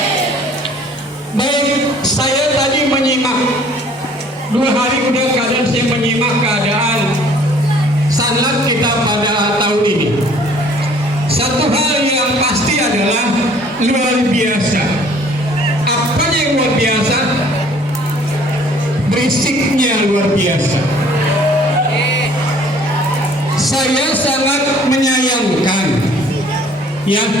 Baik, saya tadi menyimak 2 hari udah keadaan saya menyimak keadaan sanad kita pada tahun ini. Satu hal yang pasti adalah luar biasa. Apa yang luar biasa? Berisiknya luar biasa. Saya sangat menyayangkan, ya,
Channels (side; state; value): both; normal; correlation 0.56